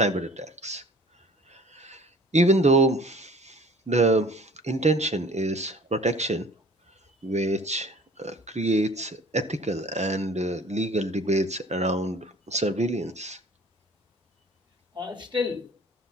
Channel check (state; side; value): normal; both; correlation 0.48